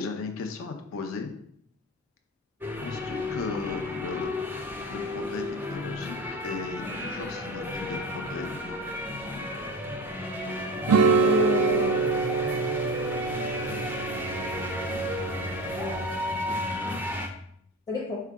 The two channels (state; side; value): normal; both; correlation 0.24